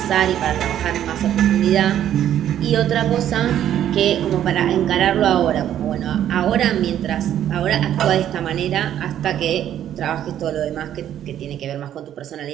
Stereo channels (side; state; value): left; quieter; 10.9 dB